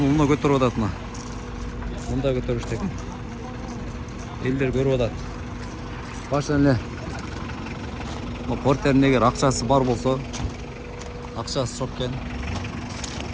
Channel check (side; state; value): both; identical; correlation 1.00